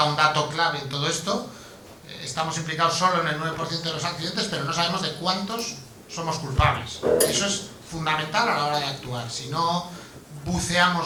un dato clave en todo esto. Estamos implicados solo en el 9% de los accidentes, pero no sabemos de cuántos somos culpables. Eso es fundamental a la hora de actuar. Si no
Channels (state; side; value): identical; both; correlation 1.00